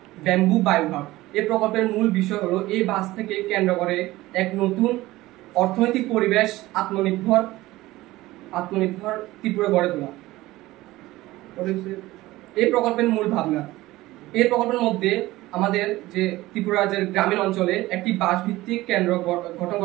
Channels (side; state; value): left; quieter; 18.0 dB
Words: ব্যাম্বু বায়ুভাব। এই প্রকল্পের মূল বিষয় হলো এই বাঁশ থেকে কেন্দ্র করে এক নতুন অর্থনৈতিক পরিবেশ, আত্মনির্ভর ত্রিপুরা গড়ে তোলা। এই প্রকল্পের মূল ভাবনা, এই প্রকল্পের মধ্যে আমাদের যে ত্রিপুরা রাজ্যের গ্রামীণ অঞ্চলে একটি বাঁশ ভিত্তিক কেন্দ্র গঠন